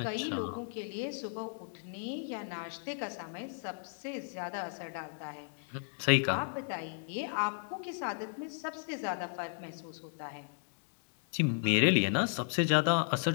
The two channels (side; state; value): right; silent; digital silence